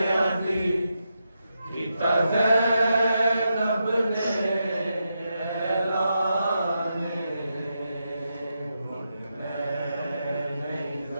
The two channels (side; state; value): both; inverted; correlation -0.85